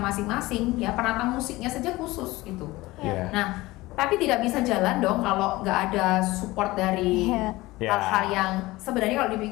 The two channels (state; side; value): quieter; right; 19.5 dB